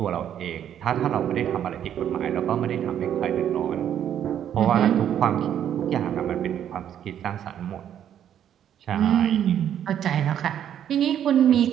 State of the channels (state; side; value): quieter; left; 9.9 dB